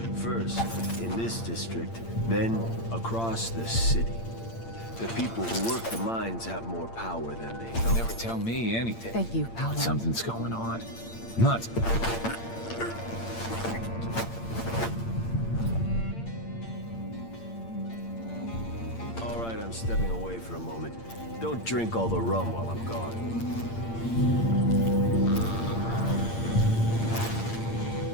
First, in this district, then across the city. The people who work the mines have more power than they know. Never tell me anything. Thank you, Paolo. Something's going on. Nuts. All right, I'm stepping away for a moment. Don't drink all the rum while I'm gone.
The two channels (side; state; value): right; late; 8.8 ms